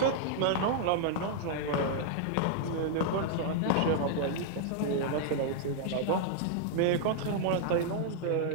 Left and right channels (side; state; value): both; different; correlation -0.01